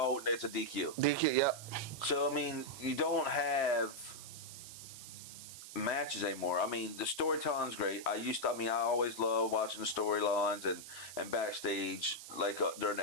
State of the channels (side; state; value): right; noise; hiss, 13 dB below the sound